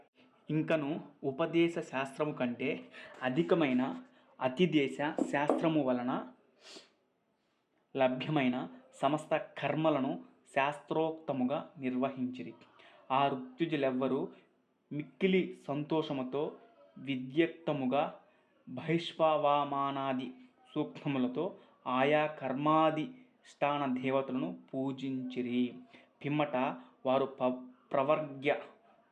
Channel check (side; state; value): both; identical; correlation 1.00